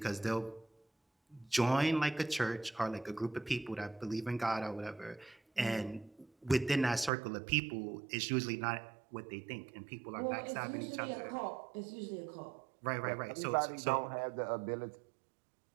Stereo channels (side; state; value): left; drops out; at 7.1 s